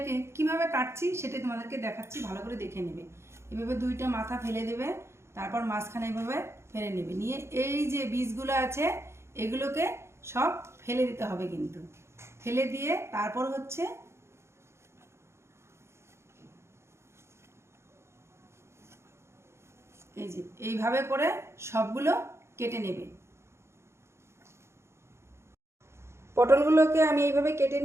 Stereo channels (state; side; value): late; left; 0.13 ms